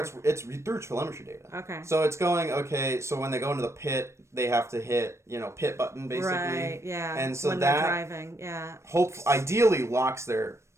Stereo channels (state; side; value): late; left; 0.13 ms